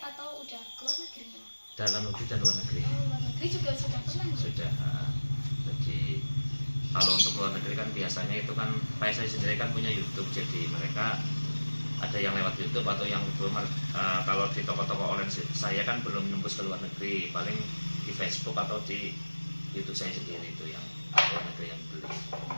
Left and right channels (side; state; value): both; inverted; correlation -1.00